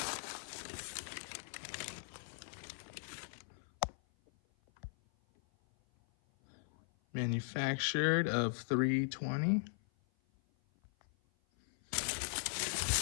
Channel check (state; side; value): silent; right; 52 dB below the other